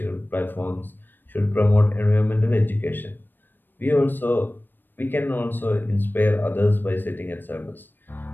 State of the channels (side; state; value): right; late; 0.094 ms